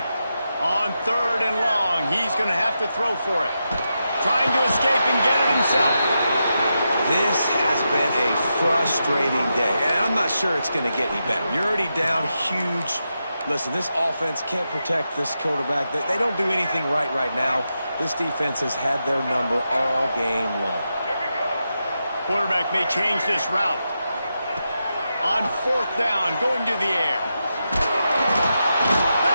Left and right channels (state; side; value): inverted; both; correlation -0.87